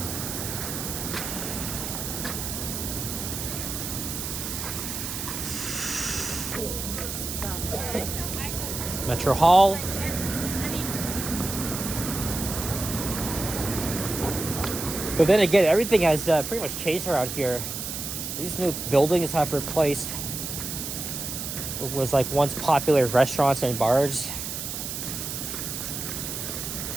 Metro Hall. But then again, everything has pretty much changed around here. These new buildings have replaced what was like once popular restaurants and bars.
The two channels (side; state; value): right; noise; hiss, 5 dB below the sound